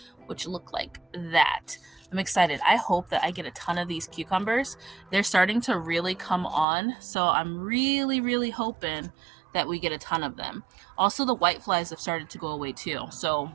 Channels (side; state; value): left; drops out; at 6.7 s